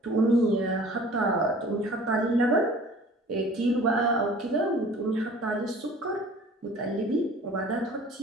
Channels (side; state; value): both; normal; correlation 0.48